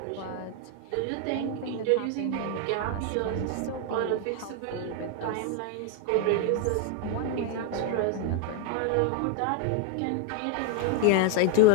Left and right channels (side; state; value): both; different; correlation 0.01